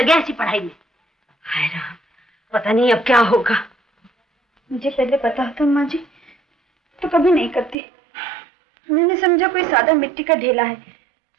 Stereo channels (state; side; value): drops out; left; at 7.8 s